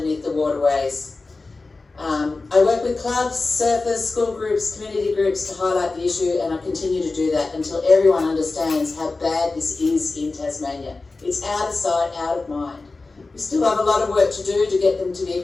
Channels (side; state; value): right; quieter; 3.6 dB